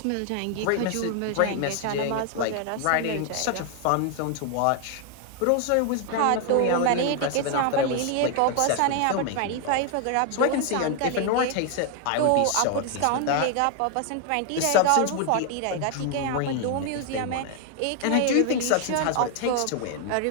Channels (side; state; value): both; different; correlation 0.00